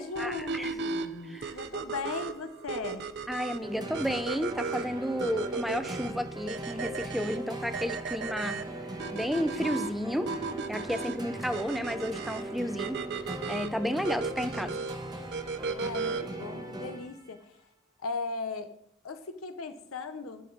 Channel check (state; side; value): normal; both; correlation 0.57